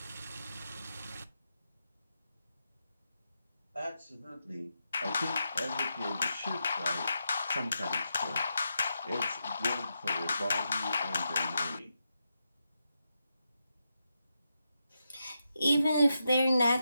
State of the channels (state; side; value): inverted; both; correlation -0.86